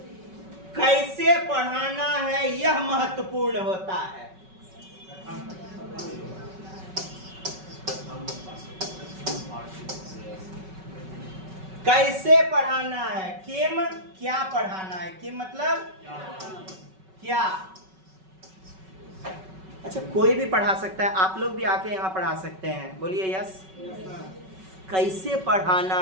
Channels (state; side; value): late; left; 5.3 ms